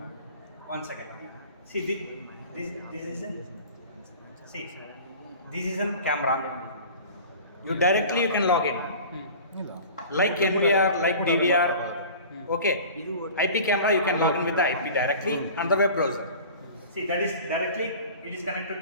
1 second. See, this is a camera. You directly you can log in. Like NVR, like DVR. Okay. IP camera you can log in with the IP directly on the web browser. See, that is directly it is connected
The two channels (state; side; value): inverted; both; correlation -0.41